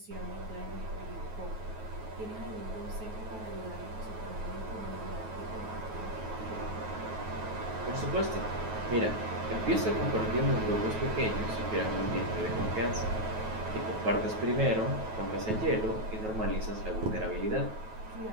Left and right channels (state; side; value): late; left; 9.3 ms